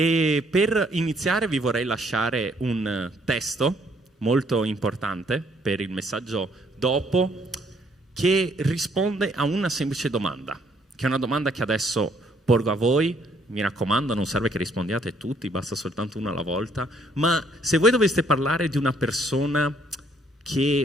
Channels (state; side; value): normal; both; correlation 0.66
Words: per iniziare vi vorrei lasciare un testo molto importante per il messaggio dopo, che risponde a una semplice domanda, che è una domanda che adesso porgo a voi. Mi raccomando, non serve che rispondiate tutti, basta soltanto una alla volta, ma se voi doveste parlare di una persona